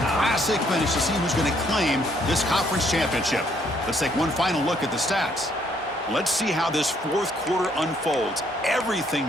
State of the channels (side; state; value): both; normal; correlation 0.68